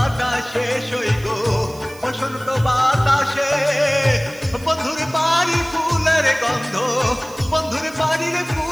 সই গো, বসন্ত বাতাসে। বন্ধুর বাড়ির ফুলের গন্ধ, বন্ধুর বাড়ির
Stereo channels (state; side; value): noise; right; hiss, 21 dB below the sound